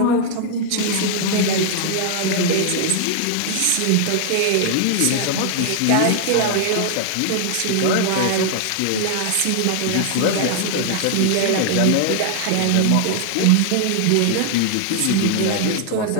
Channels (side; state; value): both; different; correlation 0.00